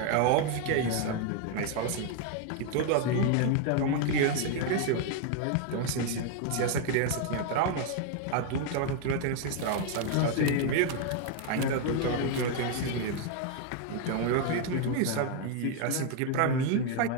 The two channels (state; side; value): different; both; correlation 0.00